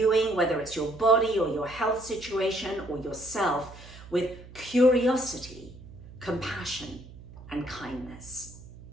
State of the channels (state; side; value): noise; right; hum, 18 dB below the sound